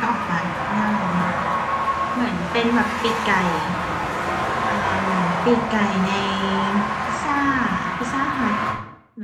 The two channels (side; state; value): both; identical; correlation 1.00